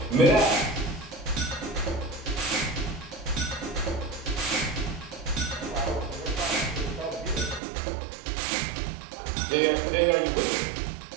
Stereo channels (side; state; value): left; drops out; at 7.6 s